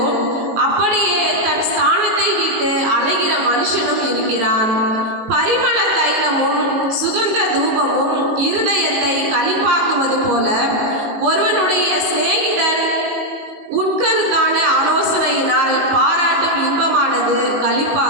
அப்படியே தன் ஸ்தானத்தை விட்டு அலைகிற மனுஷனும் இருக்கிறான். பரிமள தைலமும் சுகந்த தூபமும் இருதயத்தை களிப்பாக்குவது போல ஒருவனுடைய சிநேகிதன் உட்கருத்தான ஆலோசனையினால் பாராட்டும் இன்பமானது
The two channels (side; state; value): left; late; 19 ms